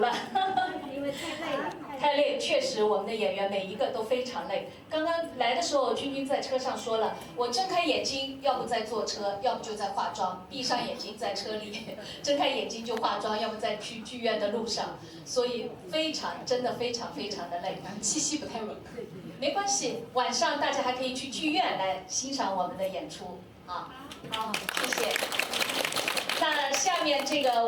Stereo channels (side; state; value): both; identical; correlation 1.00